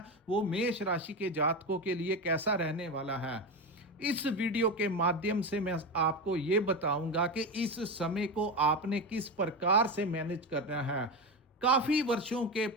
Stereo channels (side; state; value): both; normal; correlation 0.18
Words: वो मेष राशि के जातकों के लिए कैसा रहने वाला है। इस वीडियो के माध्यम से मैं आपको ये बताऊंगा कि इस समय को आपने किस प्रकार से मैनेज करना है। काफी वर्षों के